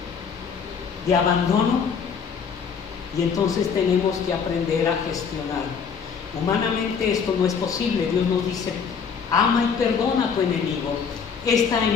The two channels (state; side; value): quieter; right; 6.4 dB